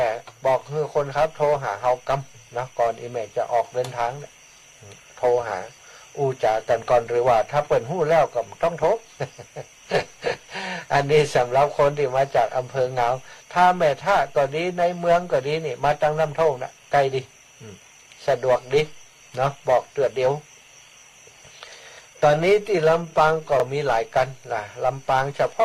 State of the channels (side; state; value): both; identical; correlation 1.00